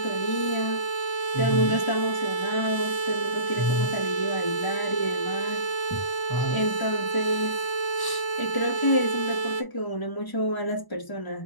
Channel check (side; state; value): right; late; 1.0 ms